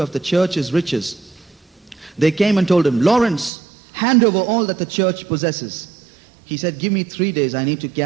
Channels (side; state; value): left; drops out; at 3.5 s